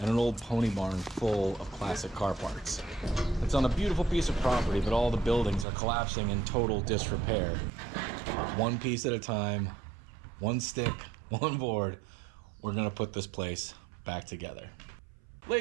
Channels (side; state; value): left; drops out; at 5.7 s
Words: and an old pony barn full of classic car parts. It's on a beautiful piece of property, but all the buildings are collapsing in total disrepair. One piece at a time, one stick, one board, we're gonna put this place back together.